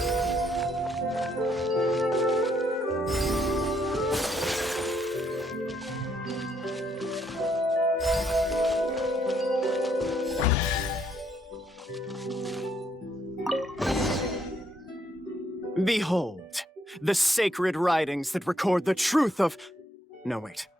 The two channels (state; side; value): normal; both; correlation 0.72